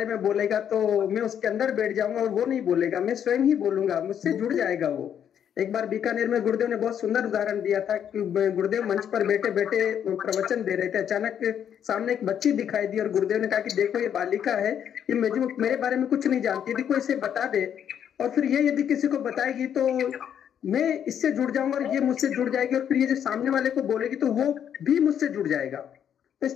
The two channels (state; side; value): quieter; right; 9.0 dB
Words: में बोलेगा तो मैं उसके अंदर बैठ जाऊंगा और वो नहीं बोलेगा, मैं स्वयं ही बोलूंगा, मुझसे जुड़ जाएगा वो। एक बार बीकानेर में गुरुदेव ने बहुत सुंदर उदाहरण दिया था कि गुरुदेव मंच पर बैठे बैठे प्रवचन दे रहे थे, अचानक सामने एक बच्ची दिखाई दी और गुरुदेव ने कहा कि देखो ये बालिका है, ये मेरे बारे में कुछ नहीं जानती, यदि कोई इसे बता दे और फिर ये यदि किसी को बताएगी तो मैं इससे जुड़ जाऊंगा और ये मुझसे जुड़ जाएगी और फिर ये जो सामने वाले को बोलेगी तो वो भी मुझसे जुड़ जाएगा। तो इस